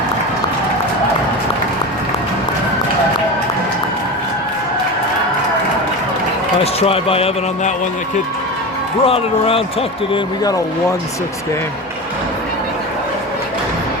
Nice try by Evan on that one. The kid brought it around, tucked it in. We got a 1-6 game.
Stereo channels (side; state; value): both; normal; correlation 0.25